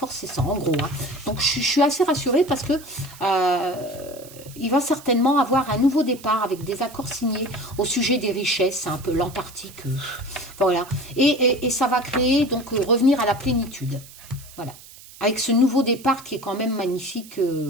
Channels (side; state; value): right; noise; hiss, 19 dB below the sound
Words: c'est ça, en gros. Hein. Donc je suis assez rassurée parce que il va certainement avoir un nouveau départ avec des accords signés au sujet des richesses, c'est un peu l'Antarctique, voilà. Et ça va créer, donc, revenir à la plénitude, voilà. Avec ce nouveau départ qui est quand même magnifique,